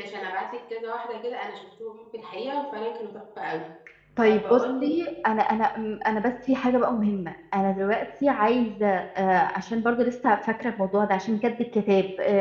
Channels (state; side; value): identical; both; correlation 1.00